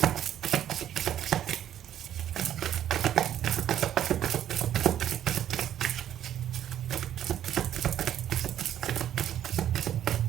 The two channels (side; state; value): left; quieter; 10.8 dB